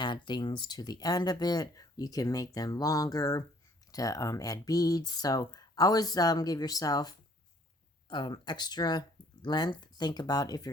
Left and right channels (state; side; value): normal; both; correlation 0.60